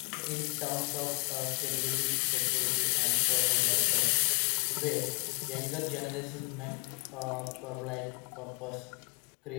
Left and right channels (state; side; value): quieter; right; 34.5 dB